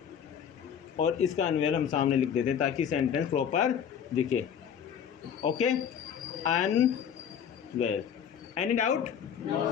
और इसका अनवेल हम सामने लिख देते हैं ताकि सेंटेंस प्रॉपर दिखे। Okay, unwell. Any doubt?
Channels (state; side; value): quieter; right; 8.3 dB